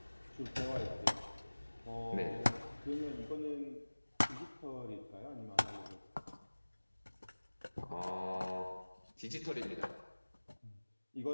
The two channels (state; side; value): inverted; both; correlation -1.00